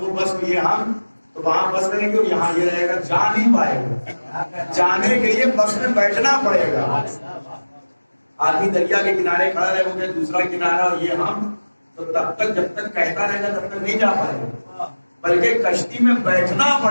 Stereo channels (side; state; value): both; inverted; correlation -1.00